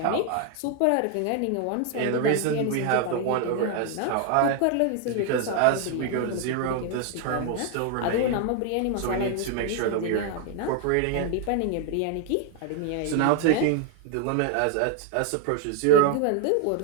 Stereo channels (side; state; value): both; different; correlation 0.01